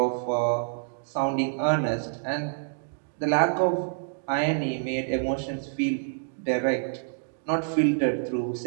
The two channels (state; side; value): silent; left; digital silence